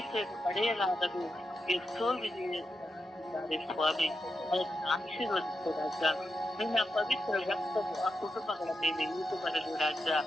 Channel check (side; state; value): both; normal; correlation 0.87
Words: ಪಡೆಯಲಾಗದೆ ಎಷ್ಟೋ ವಿಧಿಯಿದ್ದಾರೆ ಸ್ವಾಮಿ. ಅದನ್ನು ಆಶೀರ್ವದಿಸು ರಾಜ. ನಿನ್ನ ಪವಿತ್ರ ರಕ್ತವು ಆ ಕುಟುಂಬಗಳ ಮೇಲೆ ಇಳಿದು ಬರಲು ರಾಜ.